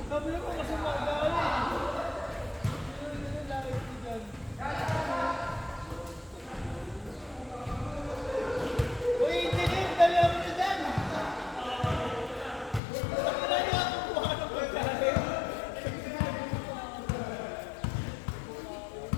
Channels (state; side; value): drops out; right; at 12.8 s